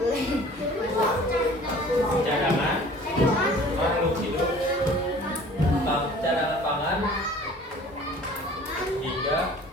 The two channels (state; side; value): normal; both; correlation 0.48